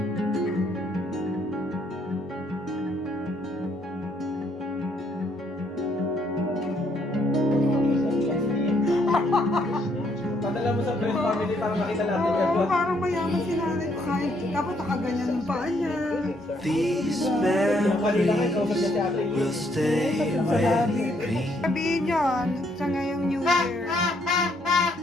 Padala mo sa friend family para makita natin Oo, parang mayaman si nanay ko kahit dapat nakaganyan yung paa niya. These memories will stay with me. Sabihin yun sa ngayong New Year.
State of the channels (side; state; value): both; normal; correlation 0.70